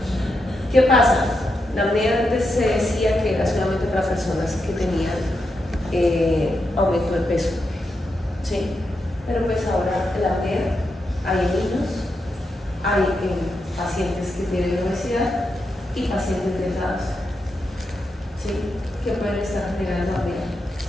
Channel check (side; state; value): both; normal; correlation 0.85